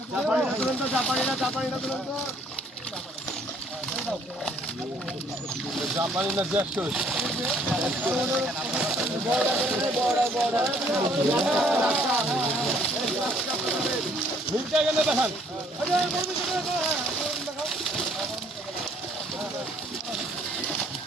জাপানি না জ্যাস্ট মিলতে গেলে দেখান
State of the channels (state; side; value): normal; both; correlation 0.62